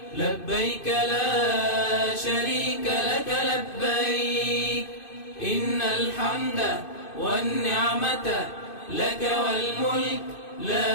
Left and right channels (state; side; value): late; right; 2.5 ms